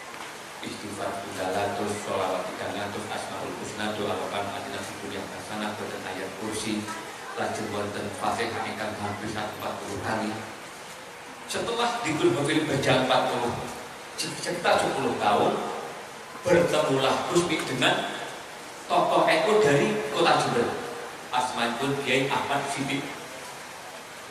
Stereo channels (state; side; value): identical; both; correlation 1.00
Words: istighfar 300, sholawat 300, asmaul husna doa wakan adina fikun yang hasanah dan ayat kursi lajeng wonten Fatihah ingkang hampir 40 kali. Setelah di Growville berjalan sekitar 10 tahun, bertemulah Gusmi dengan tokoh NU dari kota Jember. Asmanipun Kiai Ahmad Siddiq.